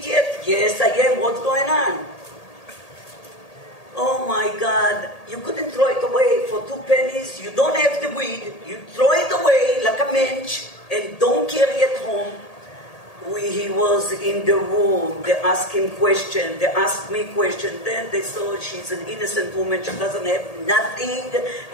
Yes, I am. What's going on? Oh my God. You couldn't throw it away for 2 pennies. You don't have the weed. You throw it away like a mensch and don't carry it home. He was in the room. They asked him questions. They asked me questions. Then they saw she's an innocent woman. She doesn't have nothing.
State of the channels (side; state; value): right; late; 1.8 ms